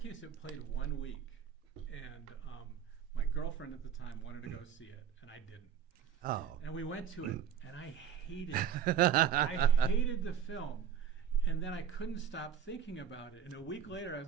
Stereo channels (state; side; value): quieter; left; 8.4 dB